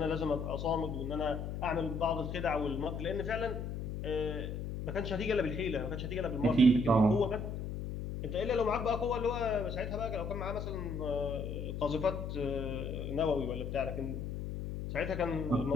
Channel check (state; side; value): noise; left; hum, 5 dB below the sound